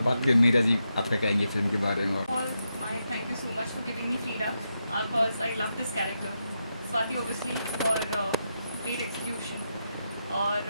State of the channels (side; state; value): both; inverted; correlation -0.85